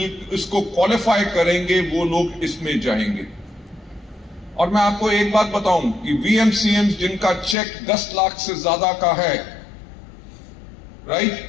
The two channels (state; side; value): drops out; right; at 7.6 s